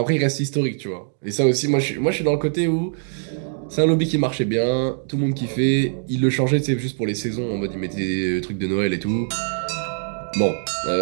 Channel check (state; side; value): silent; left; digital silence